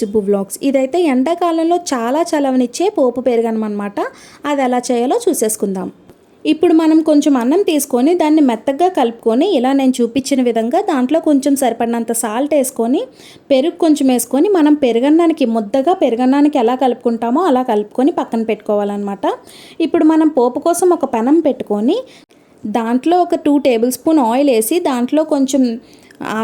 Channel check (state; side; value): identical; both; correlation 1.00